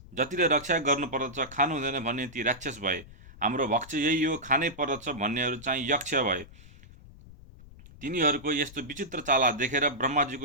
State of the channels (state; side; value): noise; left; rumble, 20 dB below the sound